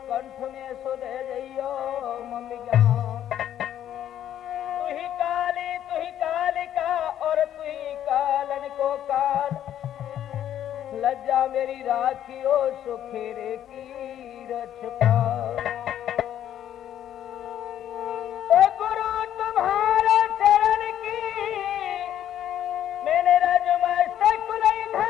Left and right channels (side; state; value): right; quieter; 10.9 dB